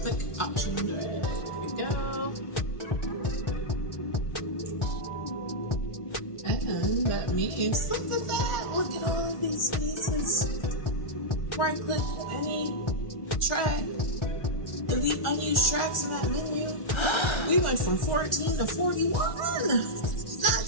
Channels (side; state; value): right; late; 1.4 ms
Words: option, drag, there we go. And that means, look at that, look at all of these spaces. Right click any track, delete unused tracks in that menu. We went from 14 to 41. Not